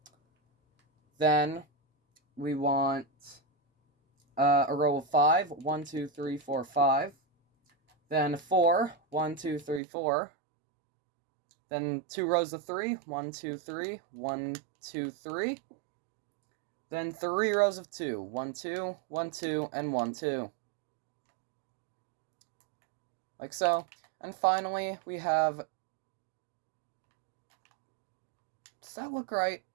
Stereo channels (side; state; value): left; drops out; at 9.8 s